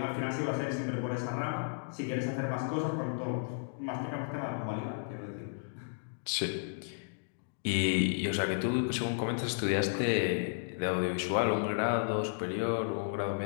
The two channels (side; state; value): right; silent; digital silence